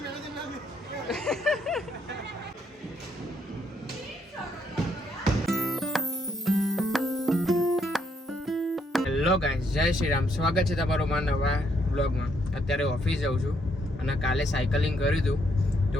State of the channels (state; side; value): normal; both; correlation 0.72